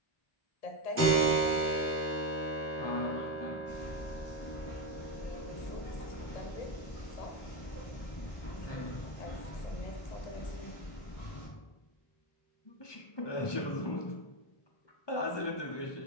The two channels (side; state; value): right; late; 1.2 ms